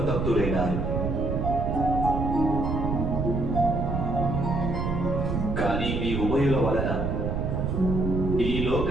కానీ మీ ఉభయుల వలన ఈ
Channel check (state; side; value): noise; right; rumble, 1 dB below the sound